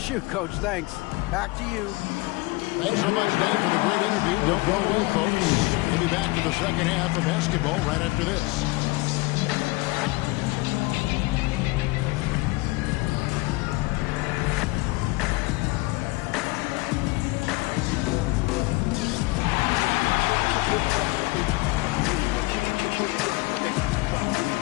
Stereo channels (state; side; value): quieter; right; 23.2 dB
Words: Coach. Thanks. Back to you. Thanks so much, Dave, for the great interview. Don't go away, folks. We'll be back to the second half of basketball right after this.